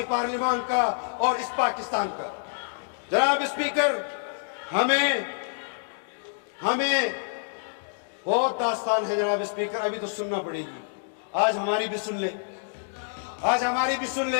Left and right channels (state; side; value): silent; right; digital silence